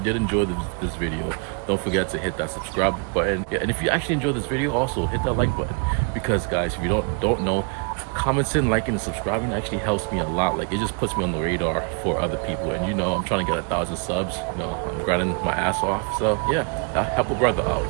enjoy this video, don't forget to hit that subscribe button. Yeah, and if you actually enjoyed this video, also hit that like button, because guys, if you don't know, commenting, liking, and subscribing actually helps me a lot. Like, it just puts me on the radar for other people. And you know, I'm trying to get 1,000 subs. You know, I'm grinding my ass off. So yeah, I'll help a brother out.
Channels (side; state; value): left; quieter; 36.9 dB